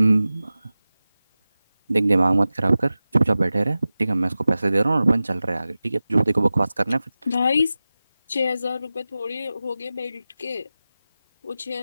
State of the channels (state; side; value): inverted; both; correlation -0.95